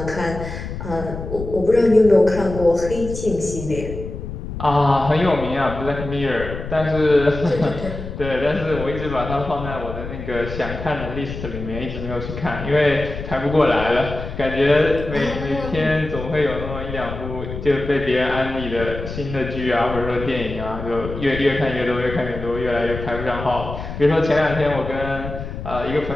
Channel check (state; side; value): noise; left; rumble, 8 dB below the sound